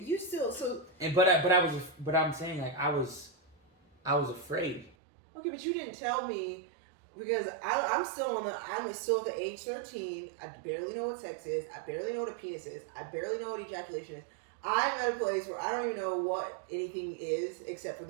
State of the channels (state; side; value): drops out; left; at 5.0 s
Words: still so. and but I'm saying like I was afraid. Okay, but you didn't tell me because I'm still at the age 13. I barely know what sex is. I barely know what a penis is. I barely know what ejaculation is. I'm at a place where I don't even know what anything is except for